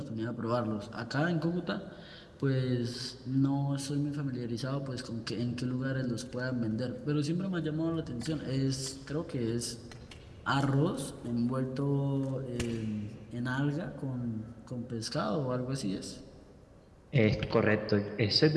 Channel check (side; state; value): both; identical; correlation 1.00